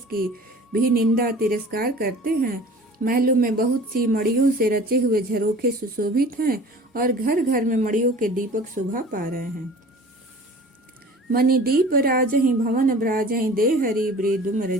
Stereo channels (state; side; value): normal; both; correlation 0.44